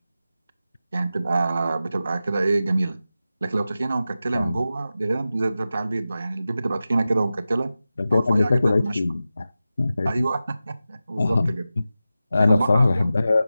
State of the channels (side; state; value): both; inverted; correlation -0.93